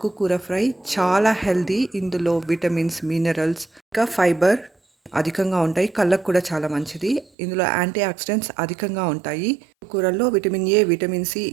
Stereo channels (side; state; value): left; drops out; at 7.3 s